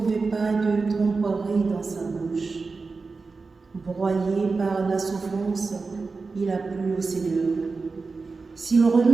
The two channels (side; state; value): left; quieter; 4.2 dB